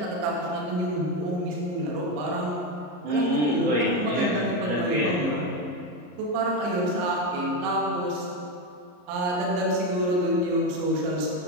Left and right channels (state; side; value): late; left; 34 ms